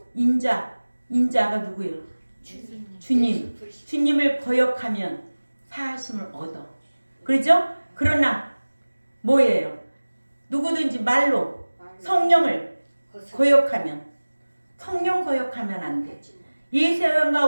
인자가 누구예요? 주님을 거역하면 사하심을 얻어. 그렇죠? 그러나 뭐예요? 누구든지 말로 성령을 거역하면, 성령 거역하면 안 돼. 이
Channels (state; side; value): inverted; both; correlation -1.00